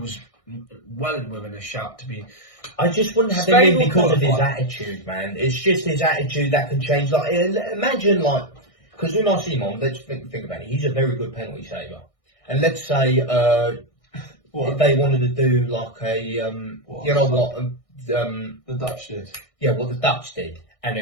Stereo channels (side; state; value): right; late; 1.6 ms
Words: well within a shout to be. I just wouldn't have him in because of his attitude, man. It's just his attitude that can change. Like, imagine, like, because Unai Simon, let's think about it. He's a very good penalty saver, and let's say if they wanted to do like a, you know what, the Dutch did. Yeah, what the Dutch did, and